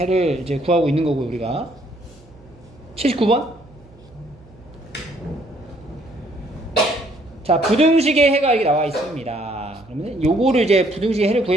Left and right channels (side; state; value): right; noise; hum, 25 dB below the sound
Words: 이제 구하고 있는 거고 우리가 79번. 자, 부등식의 해가 이렇게 나와 있습니다. 그러면 요거를 이제 부등식의 해를